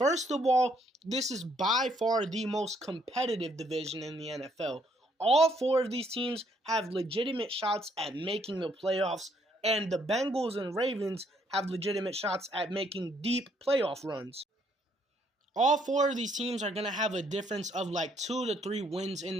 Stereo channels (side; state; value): both; normal; correlation 0.69